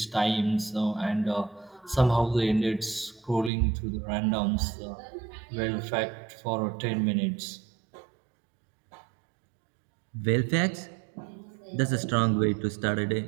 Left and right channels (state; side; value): drops out; left; at 3.5 s